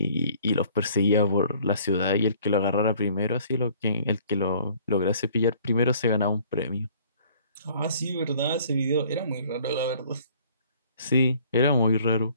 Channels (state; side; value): inverted; both; correlation -0.56